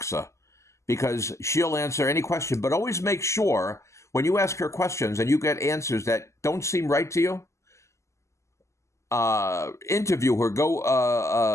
because she'll answer any question. But always make sure when you ask her questions and you get answers that don't seem right to you, interview her, go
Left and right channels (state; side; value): late; right; 0.14 ms